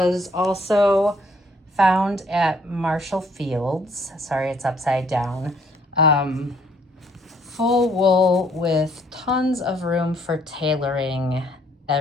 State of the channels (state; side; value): normal; both; correlation 0.64